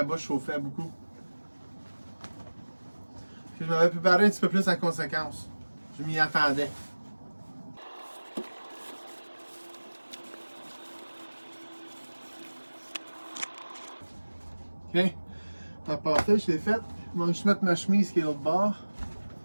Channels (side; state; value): both; inverted; correlation -1.00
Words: bois chauffait beaucoup. Puis je m'avais préparé un petit peu plus en conséquence. Je m'y attendais. Ok. La pâté, je l'ai faite. Je vais juste mettre ma chemise qui est l'autre bord.